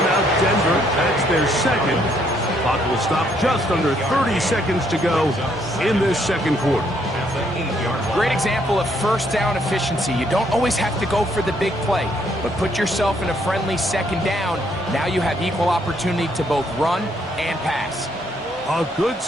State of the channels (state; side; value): normal; both; correlation 0.70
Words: Denver. That's their second. Clock will stop just under 30 seconds to go in this second quarter. Great example of first down efficiency. You don't always have to go for the big play, but put yourself in a friendly second down. Now you have equal opportunity to both run and pass. A good